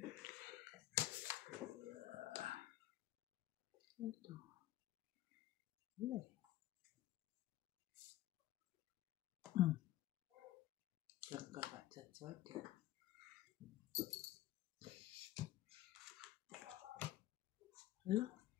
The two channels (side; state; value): right; quieter; 14.8 dB